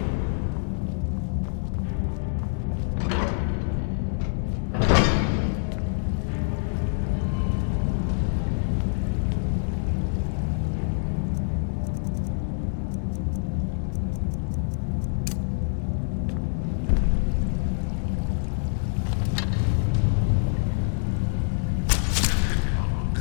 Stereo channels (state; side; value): silent; right; digital silence